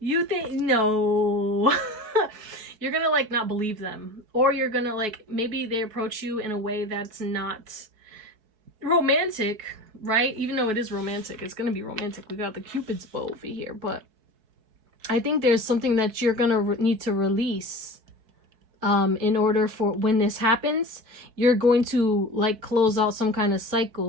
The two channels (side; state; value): left; late; 4.6 ms